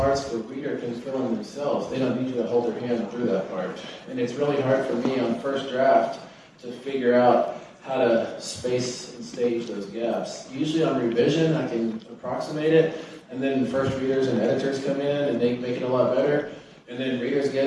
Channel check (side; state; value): both; identical; correlation 1.00